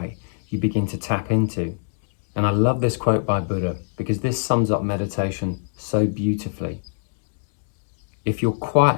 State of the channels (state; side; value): silent; right; digital silence